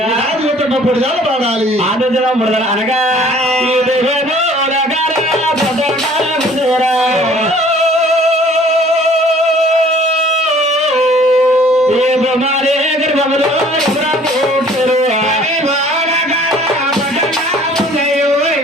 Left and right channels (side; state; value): both; normal; correlation 0.54